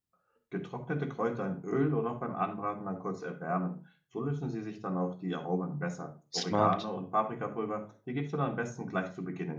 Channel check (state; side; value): identical; both; correlation 1.00